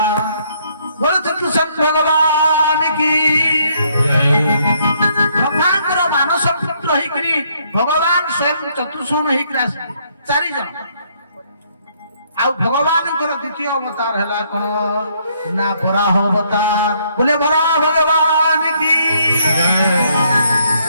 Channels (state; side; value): inverted; both; correlation -0.69